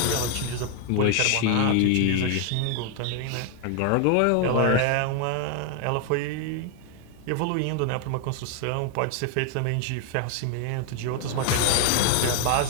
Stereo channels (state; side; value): different; both; correlation 0.00